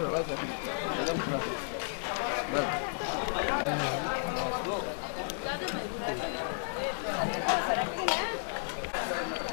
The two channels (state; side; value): silent; right; digital silence